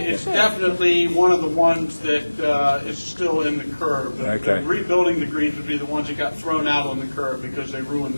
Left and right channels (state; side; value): inverted; both; correlation -1.00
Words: definitely one of the ones that is still in the curve. Okay. Rebuilding the greens would be the ones that got thrown out on the curve because they ruined